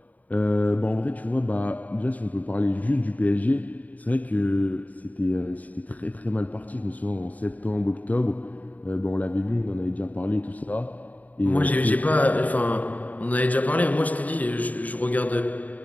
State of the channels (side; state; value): right; late; 0.075 ms